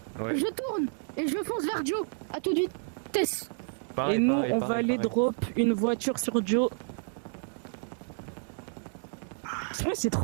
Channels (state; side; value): silent; left; 58 dB below the other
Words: Ouais. je tourne et je fonce vers Joe. À toute vitesse. Et nous, on va aller drop une voiture sur Joe. Ouais, c'est